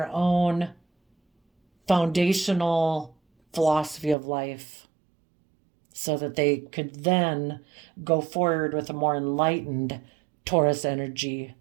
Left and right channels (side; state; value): left; drops out; at 4.2 s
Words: own foundational philosophy of life, so that they could then go forward with a more enlightened Taurus energy